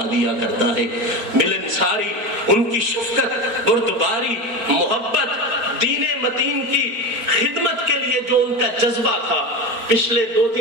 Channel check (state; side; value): late; left; 4.4 ms